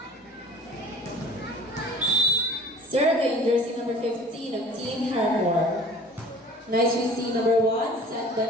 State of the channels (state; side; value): normal; both; correlation 0.46